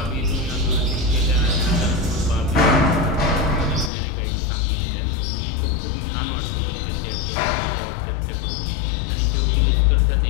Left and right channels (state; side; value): drops out; right; at 3.9 s